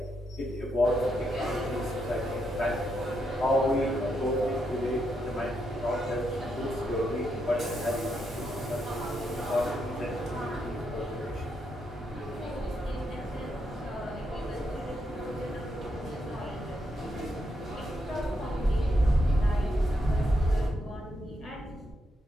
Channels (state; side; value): normal; both; correlation 0.80